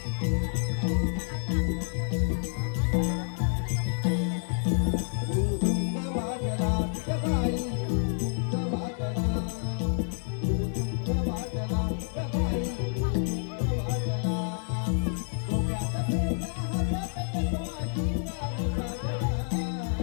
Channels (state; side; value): silent; right; 59 dB below the other